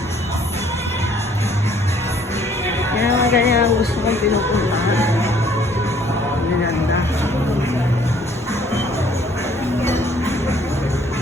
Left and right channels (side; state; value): both; normal; correlation 0.60